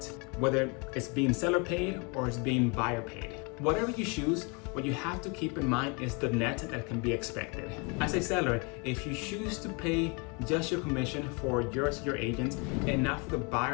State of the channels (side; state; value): right; quieter; 32.0 dB